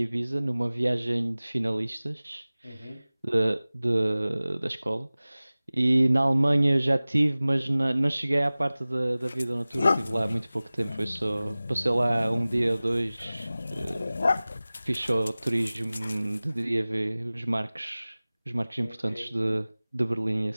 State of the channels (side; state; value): both; inverted; correlation -0.98